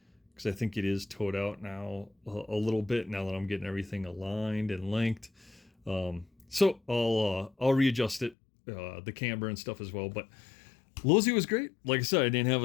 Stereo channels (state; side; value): drops out; right; at 8.3 s